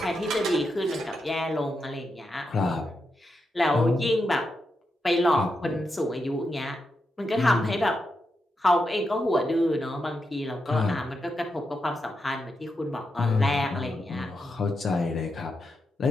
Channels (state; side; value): normal; both; correlation 0.85